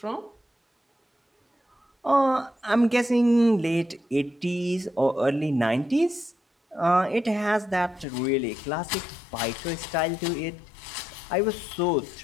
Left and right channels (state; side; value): drops out; right; at 8.1 s